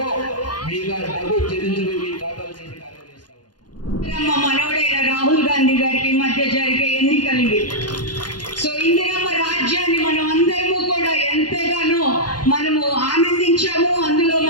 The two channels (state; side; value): late; right; 0.70 ms